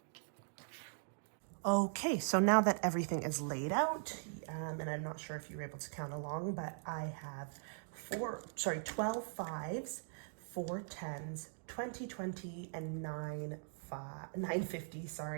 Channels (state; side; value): silent; left; digital silence